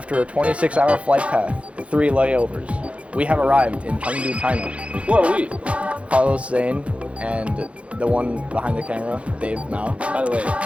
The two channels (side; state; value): left; late; 0.062 ms